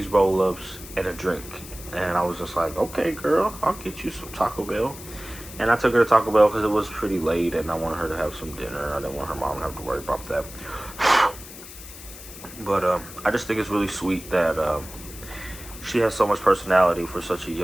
roll-ups and a drink." And I was just like, "Okay, girl, I'll get you some Taco Bell." And I took her to Taco Bell because it was pretty late and I wanted her to have some dinner. I didn't want her mom to have to worry about that. But I just think it's really sweet that she has so much personality for such a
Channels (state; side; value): noise; left; hiss, 15 dB below the sound